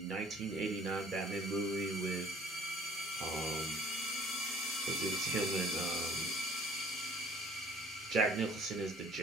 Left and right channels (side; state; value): both; normal; correlation 0.52